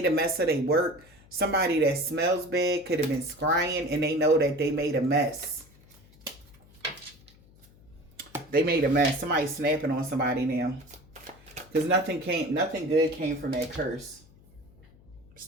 a mess of their work. Somebody that smells bad could have been scrying, and they know that they made a mess. They made a mess. Somebody's snapping on somebody now. Because nothing good came from that curse.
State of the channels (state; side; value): noise; left; hum, 26 dB below the sound